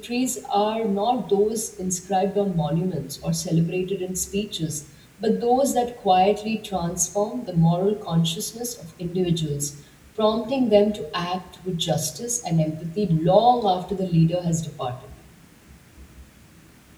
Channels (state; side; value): identical; both; correlation 1.00